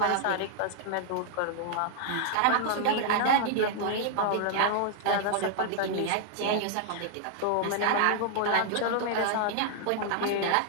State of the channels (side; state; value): both; different; correlation -0.01